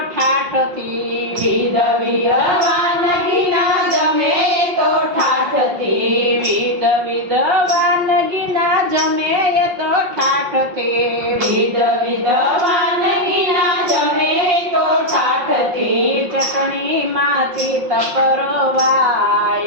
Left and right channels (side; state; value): left; late; 5.6 ms